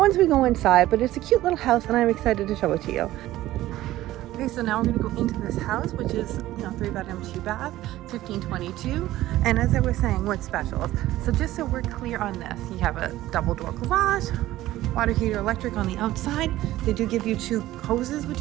we go inside. But it's a cute little house, and I'm excited to show it to you. Okay, so now we're going to go into this house, which is 3-bedroom, 2-bath, 1522. And as I was saying, what's special? So just so we're clear on this, you have a double door garage, water heater, electric on the outside. They do give you 2 hoses, which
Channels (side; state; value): left; quieter; 15.5 dB